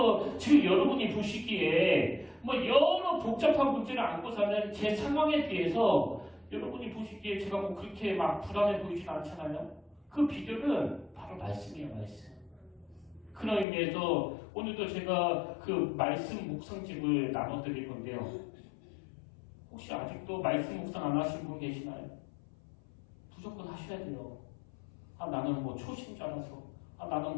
지금 여러분이 보시기에 뭐 여러 복잡한 문제를 안고 사는 제 상황에 비해서 여러분이 보시기에 제가 뭐 그렇게 막 불안해 보이진 않잖아요. 그 비결은 바로 말씀이에요, 말씀. 그런 의미에서 오늘도 제가 그 말씀 묵상집을 나눠드릴 건데요. 혹시 아직도 말씀 묵상 안 하신 분 계시나요? 무조건 하셔야 돼요. 나는 뭐 초심자라서, 나는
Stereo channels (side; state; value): right; drops out; at 13.7 s